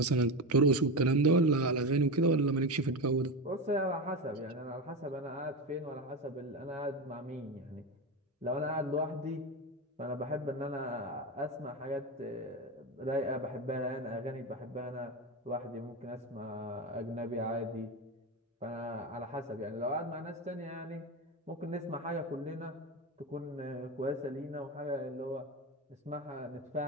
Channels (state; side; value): normal; both; correlation 0.18